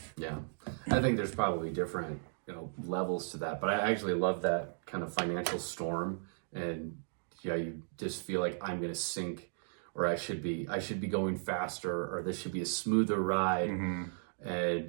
Yeah, I think there's probably different levels to that, but I actually love that kind of financial storm, and you just feel like I'm going to sink, or I should be going faster, or this should be a smoother ride,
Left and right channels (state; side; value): silent; left; digital silence